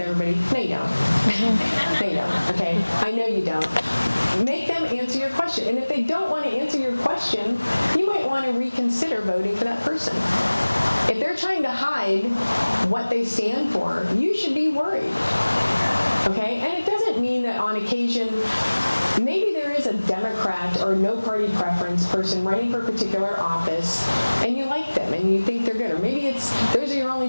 No, you don't. No, you don't. Okay? I know you don't. Make them answer your question. And if they don't want to answer your question, you might want to reconsider voting for that person. If they're trying to hide what they stand for, you should be worried. Okay? And it doesn't mean that on occasion, maybe there is a Democrat or no party preference person running for a particular office, and you like them and you think they're good. Or maybe those are your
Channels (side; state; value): both; inverted; correlation -1.00